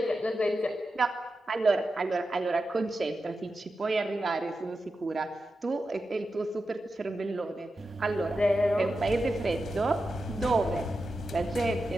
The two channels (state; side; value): normal; both; correlation 0.90